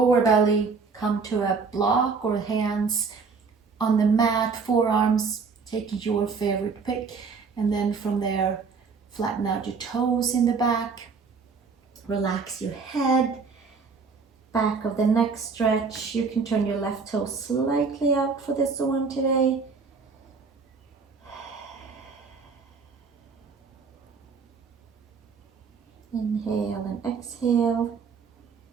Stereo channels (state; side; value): quieter; left; 5.0 dB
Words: belly, come to a block or hands on the mat, forearms, take your favorite pick, and then from there, flatten out your toes in the back, relax your head, back of the neck stretch. You can turn your left toe slightly out for this one today. Inhale and exhale.